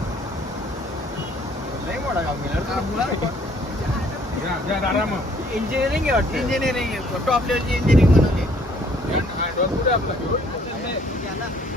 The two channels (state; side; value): normal; both; correlation 0.61